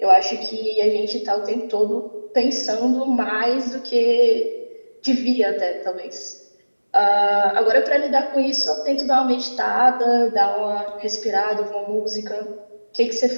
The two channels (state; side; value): inverted; both; correlation -1.00